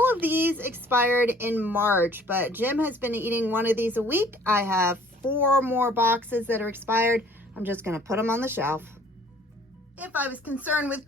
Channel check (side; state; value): both; normal; correlation 0.55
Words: of these expired in March, but Jim has been eating one of these a week. I have 4 more boxes that are expired. I'm just going to put them on the shelf. If I was concerned with